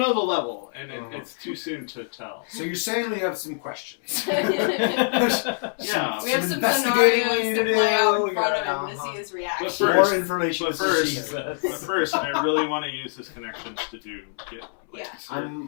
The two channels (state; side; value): silent; right; 62 dB below the other